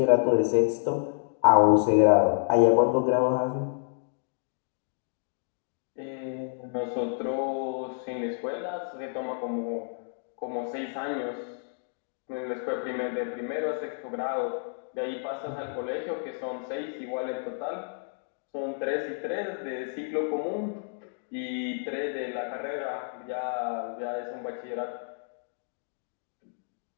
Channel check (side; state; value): right; silent; digital silence